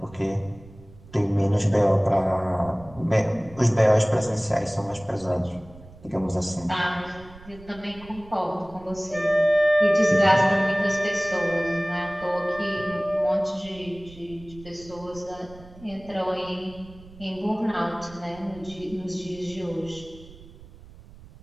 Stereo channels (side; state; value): right; noise; rumble, 20 dB below the sound